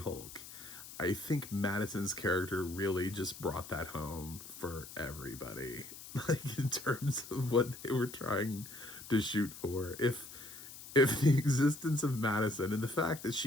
I think Madison's character really just brought that home for everybody. Like, in terms of what they were trying to shoot for. If the existence of Madison and the fact that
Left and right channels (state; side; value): noise; left; hiss, 14 dB below the sound